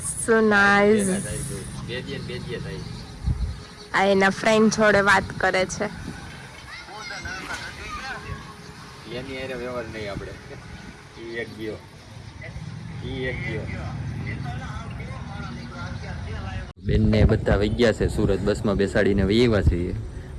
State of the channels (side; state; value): both; identical; correlation 1.00